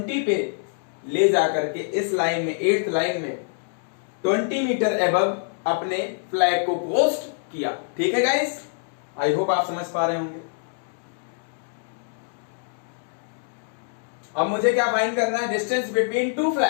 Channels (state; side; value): silent; right; digital silence